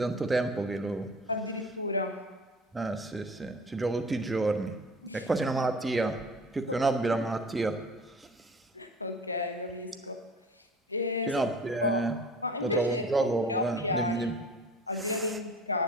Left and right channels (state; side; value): normal; both; correlation 0.43